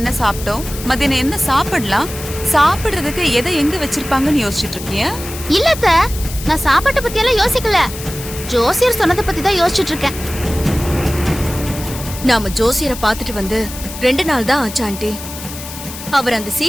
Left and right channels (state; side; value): noise; left; hiss, 11 dB below the sound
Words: சாப்பிட்டோம், மதியானம் என்ன சாப்பிடலாம், சாப்பிடுறதுக்கு எதை எங்க வச்சிருப்பாங்கன்னு யோசிச்சுட்டு இருக்கியா? இல்லத்த, நான் சாப்பாட்டை பத்தி எல்லாம் யோசிக்கல. ஜோசியர் சொன்னதை பத்தி தான் யோசிச்சுட்டு இருக்கேன். நாம ஜோசியரை பார்த்துட்டு வந்து 2 நாள் தான் ஆச்சு ஆண்டி. அவர் அந்த